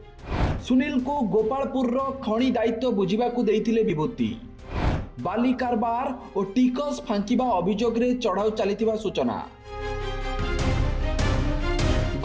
सुनील को गोपालपुर खनि दायित्व बुझिबाकू देइथिले विभूति। बाली कारबार और टिकस फांकिबा अभियोग रे चढ़ाऊ चलिथिबा सूचना।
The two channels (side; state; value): both; identical; correlation 1.00